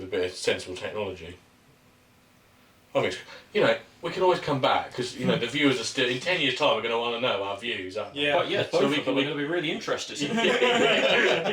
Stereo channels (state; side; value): identical; both; correlation 1.00